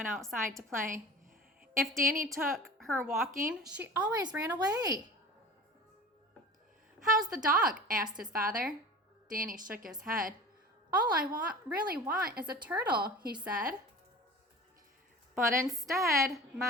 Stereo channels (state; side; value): normal; both; correlation 0.38